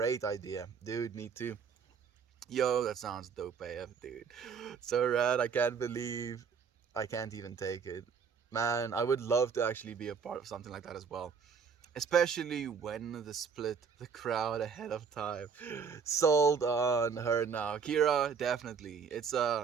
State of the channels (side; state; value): left; quieter; 6.2 dB